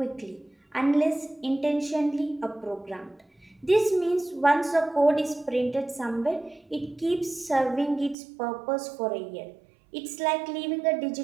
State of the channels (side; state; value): left; drops out; at 8.2 s